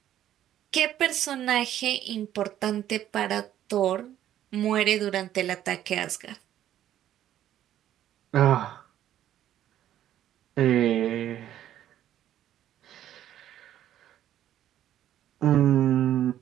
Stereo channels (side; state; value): left; quieter; 11.7 dB